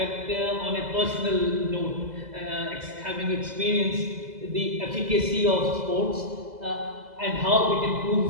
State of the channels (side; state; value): left; late; 2.0 ms